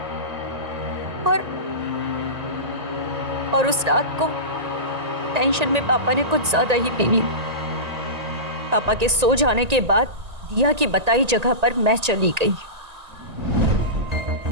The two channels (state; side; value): late; left; 1.8 ms